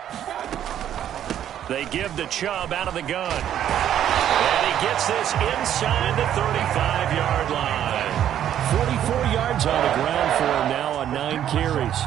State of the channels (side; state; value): left; quieter; 10.6 dB